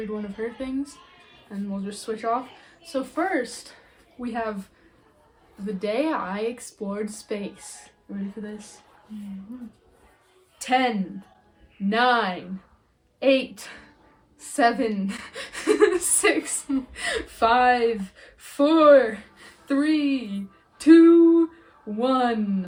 one of her things, and we'll just switch off. So first, we have The Day I Explored Space. Ready for this? 10, 9, 8, 7, 6, 5, 4, 3, 2,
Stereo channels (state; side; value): identical; both; correlation 1.00